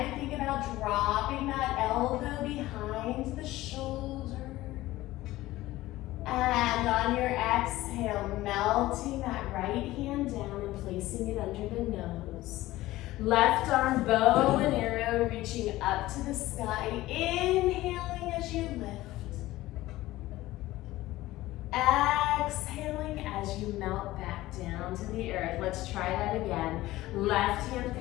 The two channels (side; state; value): right; quieter; 17.0 dB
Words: think about dropping that elbow behind the shoulder. And on your exhale, melting that right hand down and placing it under the nose. Left arm, bow and arrow, reaching up to the sky. Inhaling as you lift. Exhaling as you melt back down to the earth. Let's try that again. Left hand